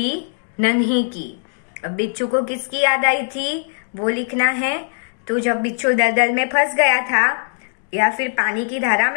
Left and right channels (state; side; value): silent; right; digital silence